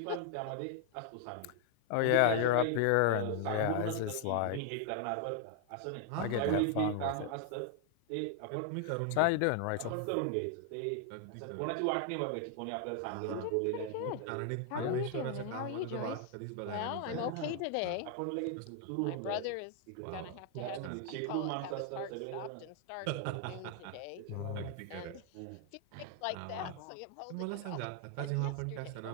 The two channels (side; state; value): both; different; correlation 0.00